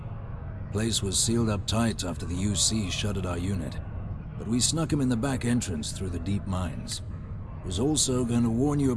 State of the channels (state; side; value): identical; both; correlation 1.00